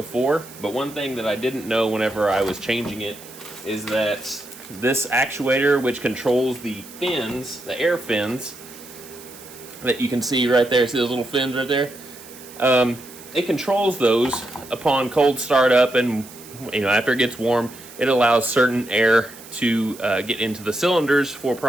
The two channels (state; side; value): noise; right; hiss, 18 dB below the sound